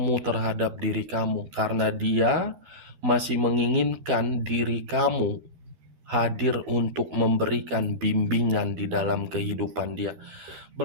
terhadap diri kamu karena dia masih menginginkan diri kamu hadir untuk memberikan bimbingan di dalam kehidupan dia.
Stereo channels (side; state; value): left; late; 12 ms